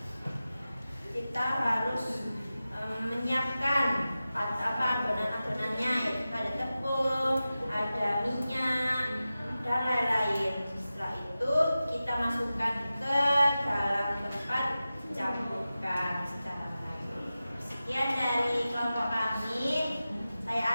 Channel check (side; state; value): both; inverted; correlation -0.94